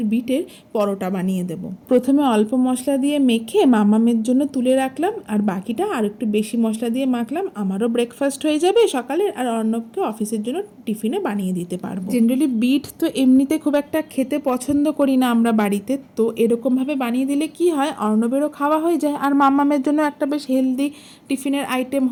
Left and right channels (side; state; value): both; identical; correlation 1.00